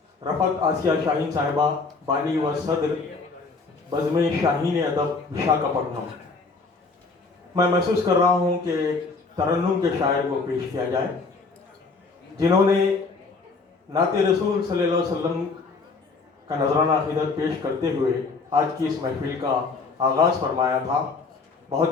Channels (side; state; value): right; quieter; 4.2 dB